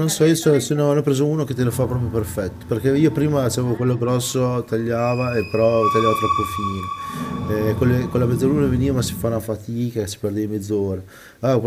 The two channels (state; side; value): identical; both; correlation 1.00